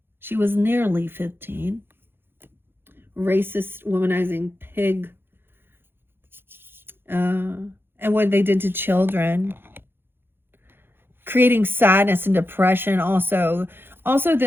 she was nearly 15. Racist, womanizing pig. And what they did to children. Creating sadness and depression also. Also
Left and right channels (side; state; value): left; late; 0.10 ms